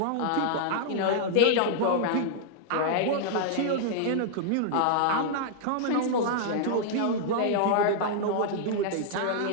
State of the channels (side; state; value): both; different; correlation -0.01